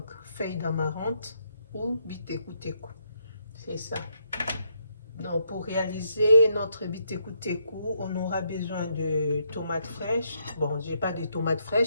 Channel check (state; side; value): inverted; both; correlation -0.76